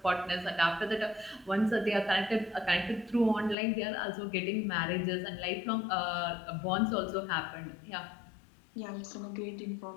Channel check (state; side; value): drops out; right; at 3.6 s